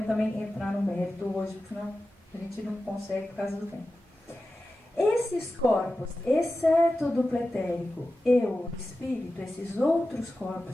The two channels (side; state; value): both; normal; correlation 0.94